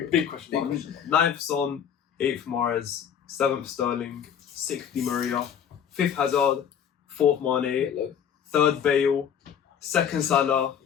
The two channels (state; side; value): quieter; right; 8.4 dB